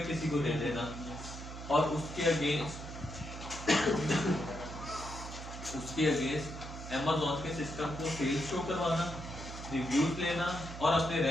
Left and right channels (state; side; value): noise; right; hum, 10 dB below the sound